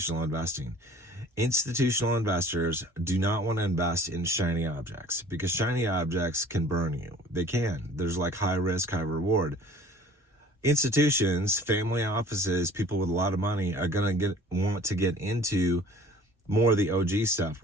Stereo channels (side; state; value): both; normal; correlation 0.49